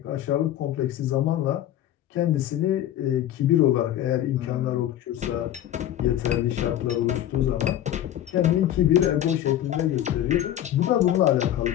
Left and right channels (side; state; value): right; quieter; 11.9 dB